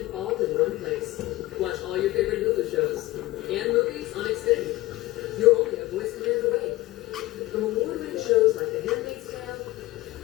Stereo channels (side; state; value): right; quieter; 18.2 dB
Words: all in one place. Watch all your favorite Hulu shows and movies on Xfinity. You're only a voice command away. From award-winning shows like The Handmaid's Tale